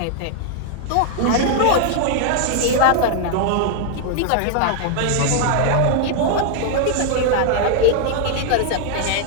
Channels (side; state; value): both; different; correlation 0.00